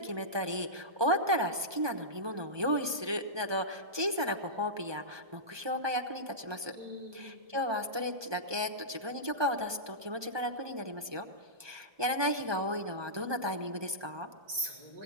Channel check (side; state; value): left; late; 1.2 ms